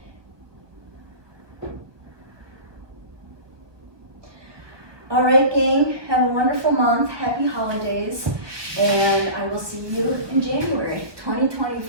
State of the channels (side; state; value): left; late; 1.2 ms